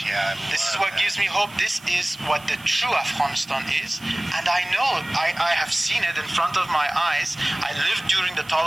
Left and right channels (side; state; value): right; noise; hiss, 23 dB below the sound